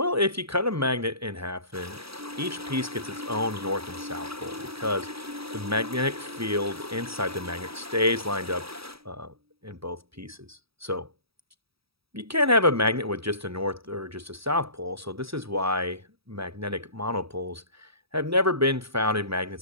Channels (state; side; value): late; left; 0.77 ms